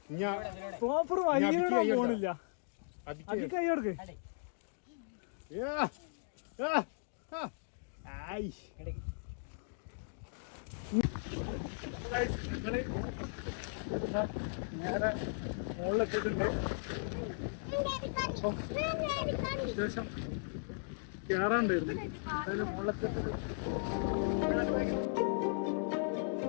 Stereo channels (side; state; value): right; silent; digital silence